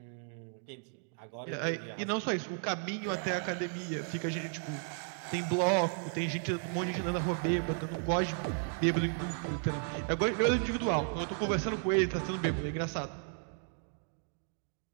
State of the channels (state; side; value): silent; left; 55 dB below the other